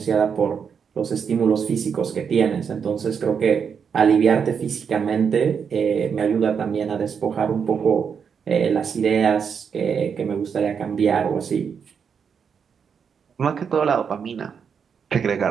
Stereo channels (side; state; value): left; quieter; 6.8 dB